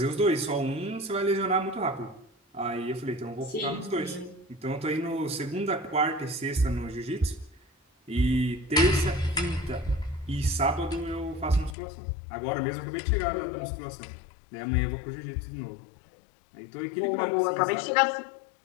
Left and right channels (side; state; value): right; drops out; at 11.8 s